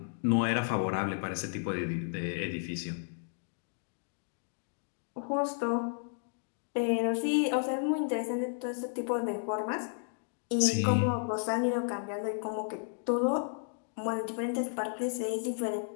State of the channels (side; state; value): right; silent; digital silence